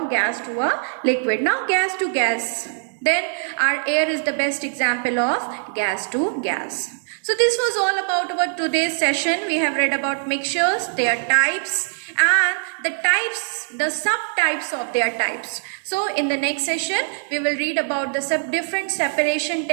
gas to a liquid. Now gas to gas. Then our air is the best example of gas to gas. So this was all about our today's session. We have read about mixtures, their types, and the subtypes of their types. So in the next session, we will read about the different separation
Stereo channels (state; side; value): silent; left; digital silence